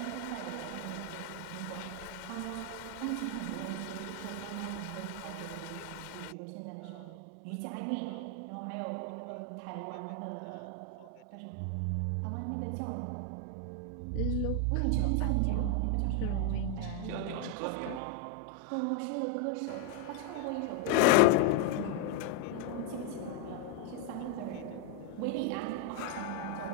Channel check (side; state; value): both; different; correlation 0.01